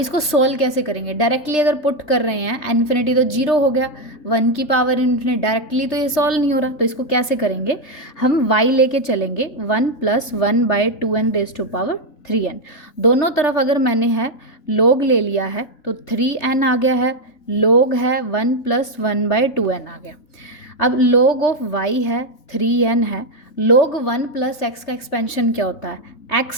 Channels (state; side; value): late; right; 3.3 ms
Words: सोल्व कैसे करेंगे, डायरेक्टली अगर पुट कर रहे हैं इन्फिनिटी तो 0 हो गया, 1 की पावर इन्फिनिटी डायरेक्टली तो ये सॉल्व नहीं हो रहा, तो इसको कैसे करेंगे, हम y लेके चलेंगे 1 + 1/2n⁻³ दोनों तरफ अगर मैंने है log ले लिया है तो 3n आ गया है, log है 1 + 1/2n आ गया। अब log ऑफ y है 3n है, log 1 + x का एक्सपेंशन क्या होता है x